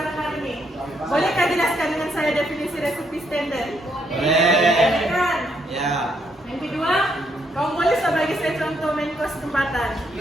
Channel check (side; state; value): both; normal; correlation 0.74